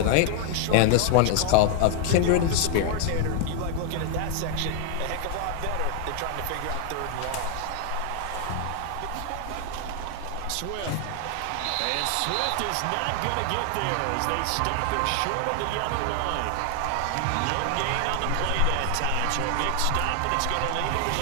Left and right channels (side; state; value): both; different; correlation 0.00